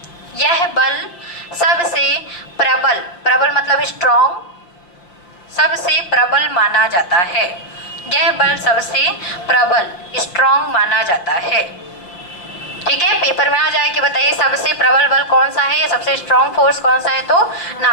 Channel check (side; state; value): right; late; 5.6 ms